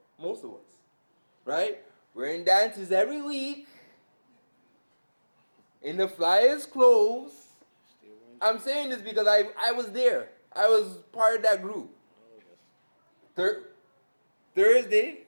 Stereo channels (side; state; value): both; inverted; correlation -1.00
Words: most of us, right? We're in dances every week, in the flyest clothes. I'm saying this because I was there. I was part of that group. Thursday